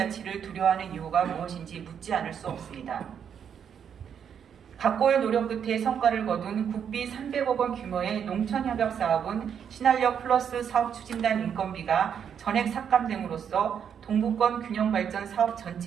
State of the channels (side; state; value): left; quieter; 8.0 dB